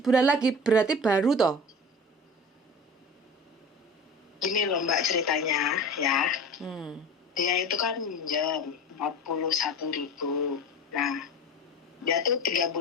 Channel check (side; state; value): both; normal; correlation 0.35